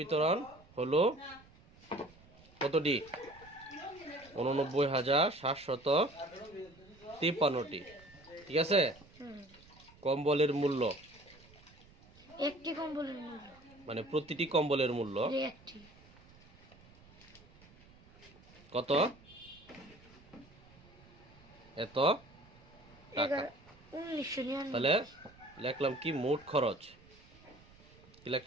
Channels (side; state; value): right; noise; rumble, 24 dB below the sound